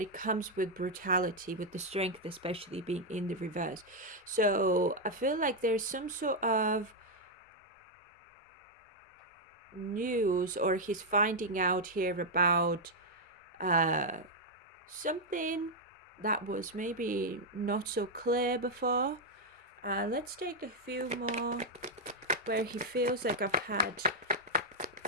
it comes with brutality, with the strength especially being in the reverse. So I feel like there's some sort of news, or he's finding out here about something that was maybe not so clear before. Let's take a few more where he feels like I've had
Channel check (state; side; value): normal; both; correlation -0.01